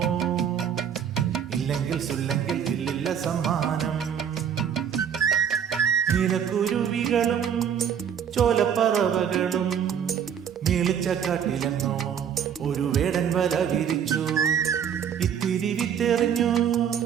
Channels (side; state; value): left; quieter; 8.4 dB